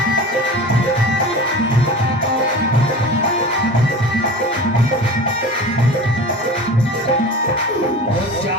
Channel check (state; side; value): normal; both; correlation 0.34